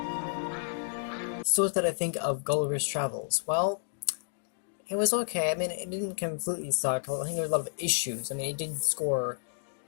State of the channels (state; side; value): silent; right; digital silence